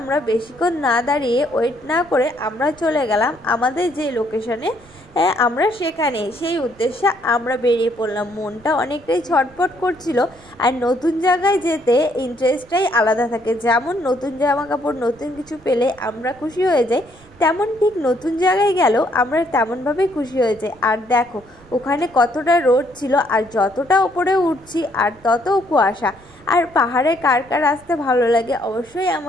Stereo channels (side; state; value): right; noise; rumble, 26 dB below the sound